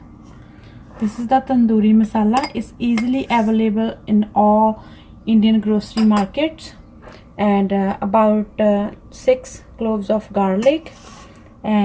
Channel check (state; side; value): identical; both; correlation 1.00